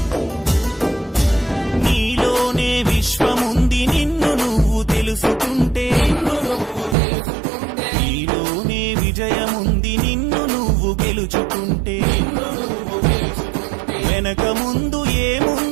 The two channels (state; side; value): drops out; left; at 7.0 s